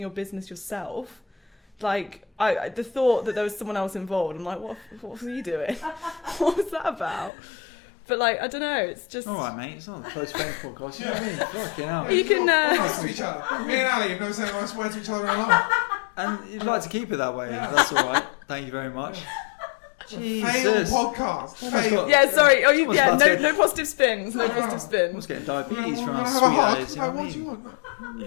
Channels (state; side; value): drops out; right; at 7.3 s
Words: business yourself. Like, the thought that there was someone else involved, I'm like, what was you doing? What was that about? But like, I don't know, it's just... All right, mate, it's not the Close Friends podcast, you know what I mean? Fucking hell. You can... Nice to each other. Me and Ali have never said nice words to each other in a while. And you'd like to keep it that way, that's all right. Thank you very much. Jesus. Fail podcast. Fail. Yeah, sorry. Oh, no positive spins. No positive I was spins. getting diabetes from our Have a sweet hug. eyes, you know what I What do mean? you want?